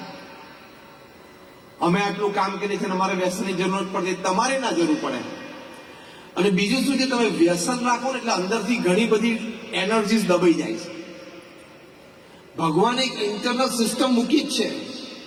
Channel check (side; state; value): both; identical; correlation 1.00